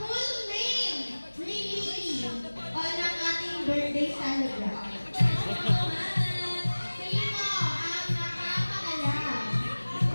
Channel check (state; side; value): inverted; both; correlation -1.00